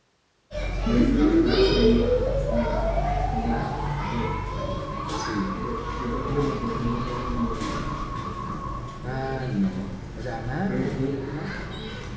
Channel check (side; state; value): both; identical; correlation 1.00